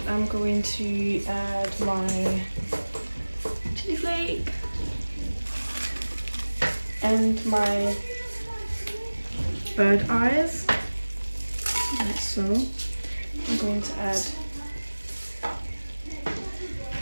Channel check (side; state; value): both; inverted; correlation -1.00